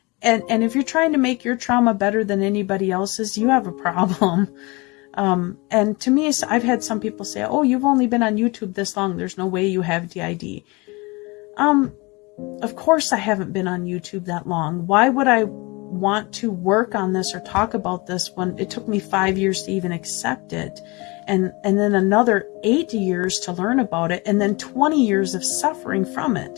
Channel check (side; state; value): right; quieter; 25.9 dB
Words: And if you're trying to make your trauma better than anybody else's, you have a problem. And to me, I've had some people say, oh, you've only been on YouTube this long. There's no way you have DID. Of course I haven't been on YouTube that long. Why would I want to work on this or talk about this when it took me 5 years to even accept it? And then another 8 years to learn about it, and then 20 years of suffering from